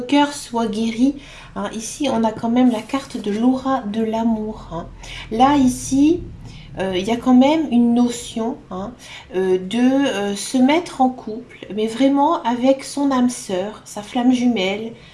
soit guéri, hein. Ici, on a quand même la carte de l'aura de l'amour, hein. Là, ici, il y a quand même une notion, hein, de se mettre en couple, mais vraiment avec son âme sœur, sa flamme jumelle,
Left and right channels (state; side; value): identical; both; correlation 1.00